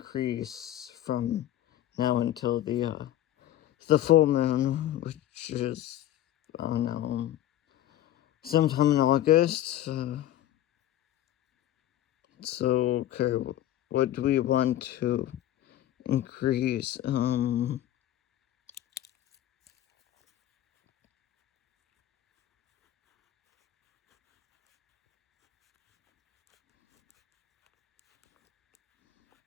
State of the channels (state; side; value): quieter; right; 12.7 dB